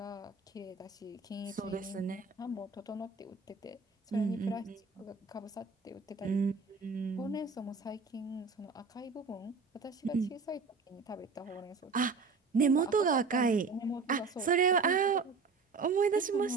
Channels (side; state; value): left; quieter; 4.5 dB